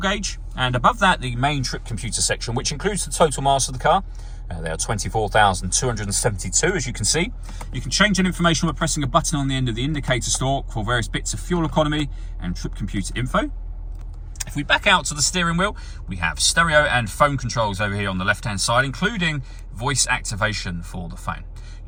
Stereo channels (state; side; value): identical; both; correlation 1.00